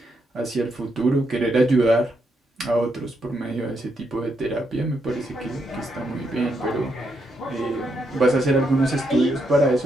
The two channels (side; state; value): both; normal; correlation 0.79